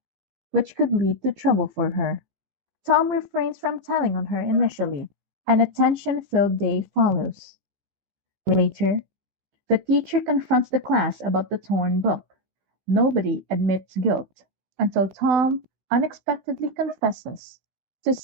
which could lead to trouble for her. Tom refrains from telling on her initially, and a tension-filled day follows. Later, the teacher confronts the class about the torn book. Nobody admits guilt until Tom unexpectedly confesses to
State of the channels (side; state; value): left; late; 15 ms